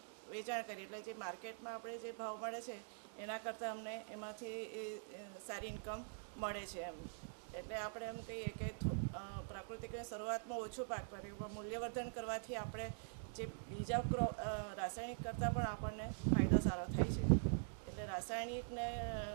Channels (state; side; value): silent; left; digital silence